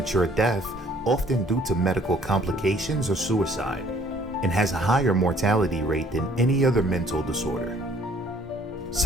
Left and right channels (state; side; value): normal; both; correlation 0.59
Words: death, often due to medical complications or suicide, and has a higher mortality rate than any other mental disorder.